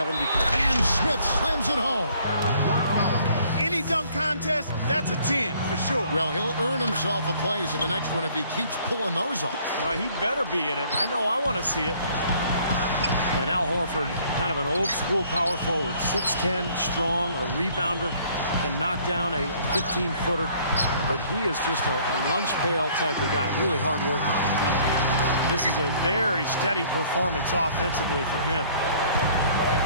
And Smith slams it home. any dunk contest, that's a 10 for sure. Well, he'll earn himself a place in the next one if he keeps pulling those off. Well, he better be in it. I know I want to see it. And Al Horford, kind of an old-school power forward, 6'10", strong, a rebounder, can knock down a 15-footer, but he is just a lunch pail type of guy, really hard worker. This is a very steady performance offensively for him.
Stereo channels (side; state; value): both; inverted; correlation -0.59